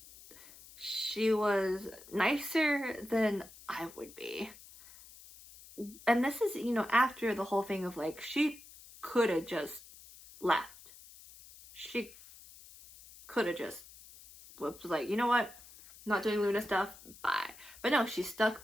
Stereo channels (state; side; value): noise; left; hiss, 20 dB below the sound